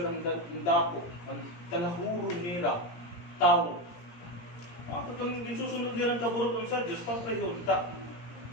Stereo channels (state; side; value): late; right; 17 ms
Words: ang dako, ang talahuro nila, tao. Kung gisusunod nila ang kaburot ng sa Diyos, papriho, ta.